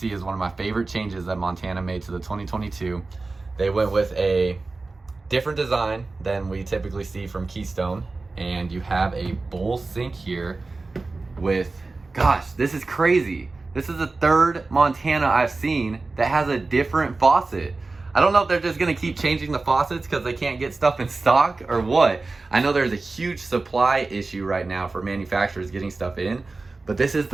is one of my favorite changes that Montana made to the 2022. They went with a different design than we typically see from Keystone, and you have a bowl sink here with, gosh, this is crazy. This is the 3rd Montana I've seen that has a different faucet. I don't know if they're just gonna keep changing the faucets because they can't get stuff in stock or what. I know there's a huge supply issue right now for manufacturers getting stuff in, but this is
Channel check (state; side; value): quieter; left; 3.6 dB